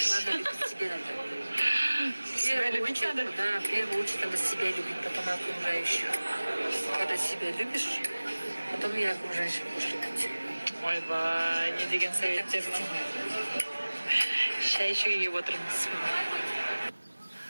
Надо любить себя надо. Себя любить надо? Да, в первую очередь надо себя любить, потом окружающих. Когда себя любишь, потом и окружающих будешь любить. Ойбай, не деген советтердің. Шай ішуге келіп отырмыз.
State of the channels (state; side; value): inverted; both; correlation -1.00